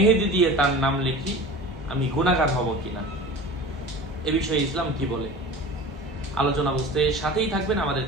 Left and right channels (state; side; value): normal; both; correlation 0.37